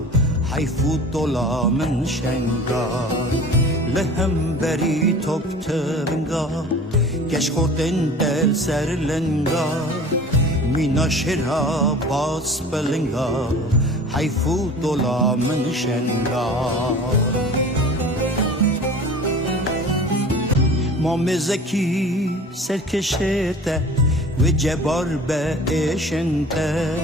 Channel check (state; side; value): normal; both; correlation 0.42